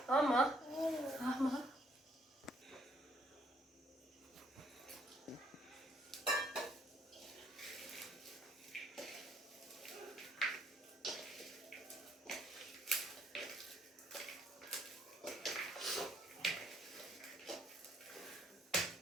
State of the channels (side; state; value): both; normal; correlation 0.67